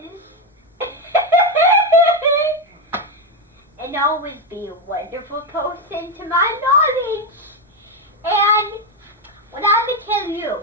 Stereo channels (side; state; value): both; normal; correlation 0.08